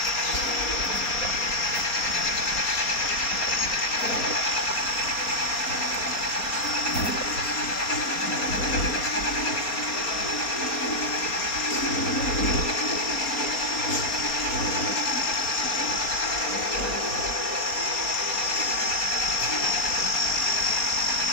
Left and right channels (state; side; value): late; right; 4.3 ms